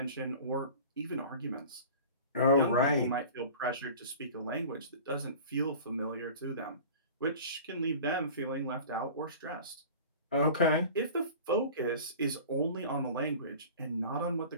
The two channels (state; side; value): inverted; both; correlation -0.39